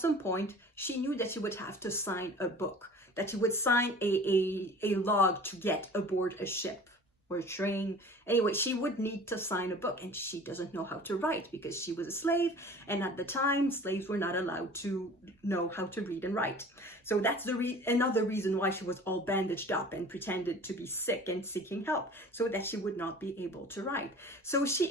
point, she knew that she would have to sign a book, that she would sign a log to get aboard a ship or a train. Anyway, she would need to sign a book, and she doesn't know how to write because she was a slave, and at the time, slaves were not allowed to know how to read and write. So that's another reason why she was all bandaged up and pretended to be sick and seeking help, so that she would not be able to write. So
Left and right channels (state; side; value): normal; both; correlation 0.43